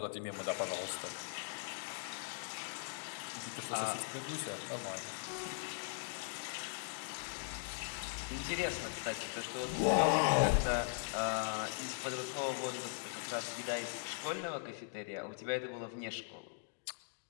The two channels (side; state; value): right; silent; digital silence